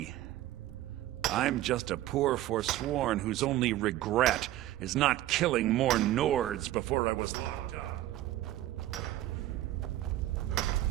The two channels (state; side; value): quieter; left; 14.6 dB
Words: I'm just a poor Forsworn whose only regret is not killing more Nords before I was locked up.